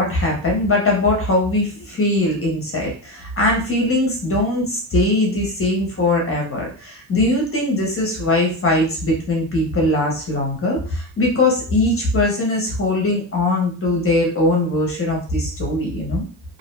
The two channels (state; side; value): normal; both; correlation 0.20